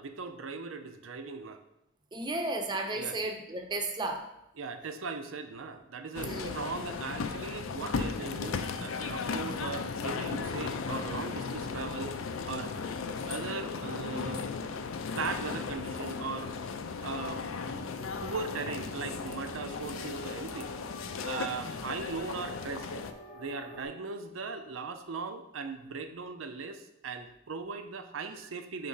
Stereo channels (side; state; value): both; normal; correlation 0.06